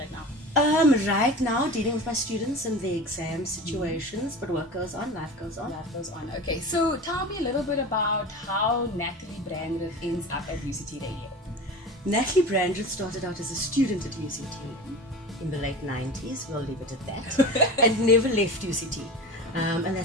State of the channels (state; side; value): normal; both; correlation 0.32